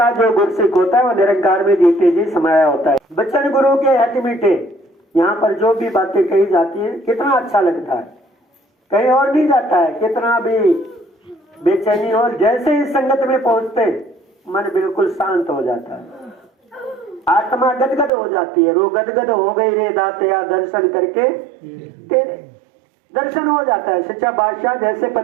जो गुरसिक होता है वो निरंकार में जीते जी समाया होता है। बच्चन गुरु के हट मीठे, यहाँ पर जो भी बातें कही जाती है कितना अच्छा लगता है, कहीं और नहीं जाता है। कितना भी बेचैनी हो, जैसे इस संगत में पहुंचते मन बिल्कुल शांत हो जाता है, आत्मा गदगद हो जाती है। रो गदगद हो गई रे दातया दर्शन करके तेरे, दर्शन हो जाता है। सच्चा बादशाह जैसे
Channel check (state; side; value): drops out; left; at 18.1 s